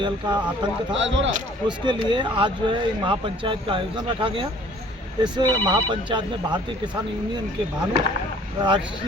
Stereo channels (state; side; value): normal; both; correlation 0.54